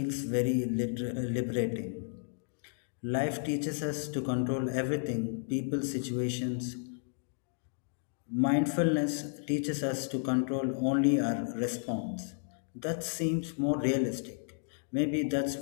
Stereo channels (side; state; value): right; silent; digital silence